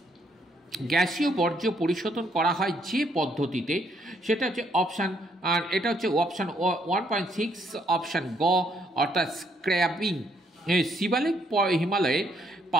গ্যাসীয় বর্জ্য পরিশোধন করা হয় যে পদ্ধতিতে সেটা হচ্ছে অপশান, আর এটা হচ্ছে অপশান 1.6 অপশান গ অর্থাৎ স্ক্র্যাবিং। শিবালিক হিমালয়ের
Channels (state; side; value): normal; both; correlation 0.71